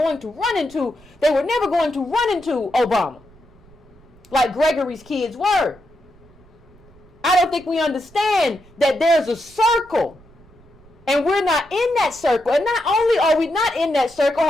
never going to run into Obama like Gregory's kids were. I don't think we understand that there's a circle, and we're not in that circle. And not only are we not in that circle,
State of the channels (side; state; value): right; noise; rumble, 26 dB below the sound